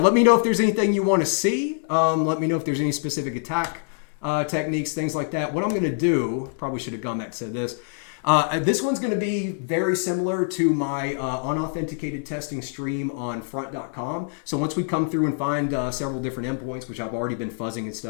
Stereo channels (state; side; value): silent; right; 62 dB below the other